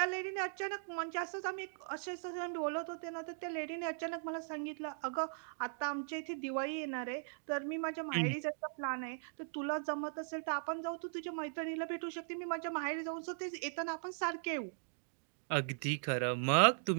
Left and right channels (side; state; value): left; silent; digital silence